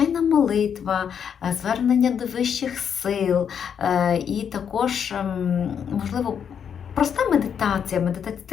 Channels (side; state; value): right; quieter; 7.8 dB